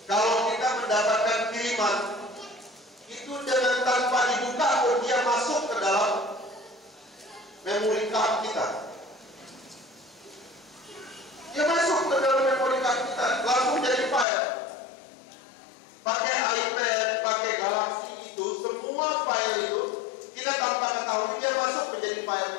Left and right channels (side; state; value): right; drops out; at 14.2 s